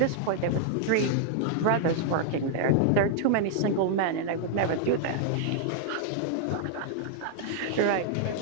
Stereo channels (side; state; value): both; different; correlation -0.01